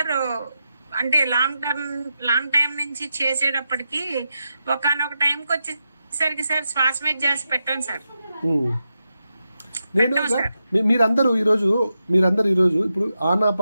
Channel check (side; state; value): both; inverted; correlation -0.87